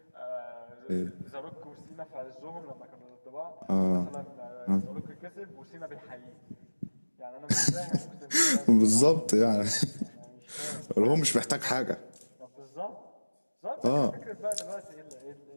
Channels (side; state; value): both; inverted; correlation -1.00